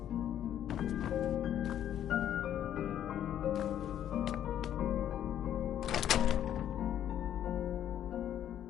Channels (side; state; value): right; quieter; 10.7 dB